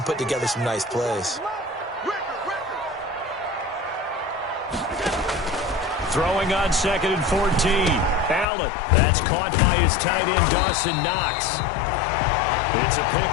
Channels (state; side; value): drops out; right; at 8.5 s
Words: put together some nice plays. Throwing on 2nd and 14. Allen. That's caught by his tight end, Dawson Knox. It's a